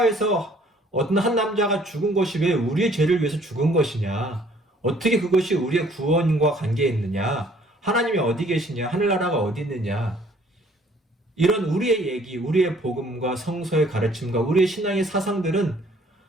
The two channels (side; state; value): both; normal; correlation 0.59